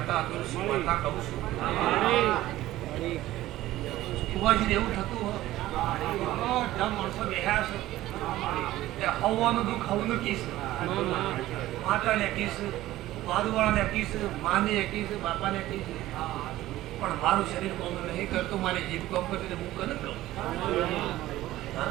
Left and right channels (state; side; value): quieter; left; 15.6 dB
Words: તુલસી માતા કહું છું. કુવાજી એવું થતું માણસો બેહ્યા છે હવાનું દુઃખ હવનું કીશ માતાને કીશ બાદવાળાને કીશ માને કીશ બાપાને કીશ પણ મારું શરીર કોમ નહીં કરતું મારી જીભ કોમ કરતી હું કને કહું